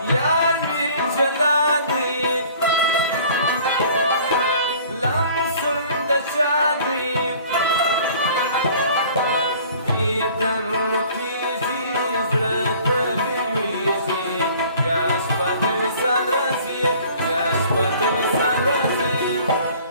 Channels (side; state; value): both; inverted; correlation -0.51